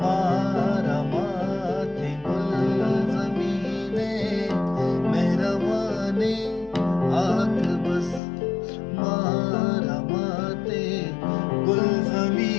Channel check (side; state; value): right; drops out; at 8.2 s